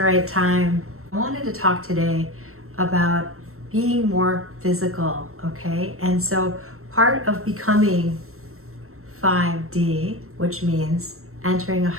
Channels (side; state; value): left; late; 0.63 ms